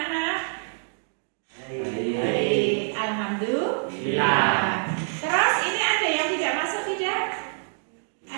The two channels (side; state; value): left; silent; digital silence